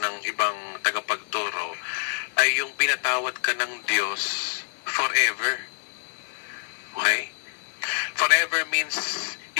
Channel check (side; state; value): right; silent; digital silence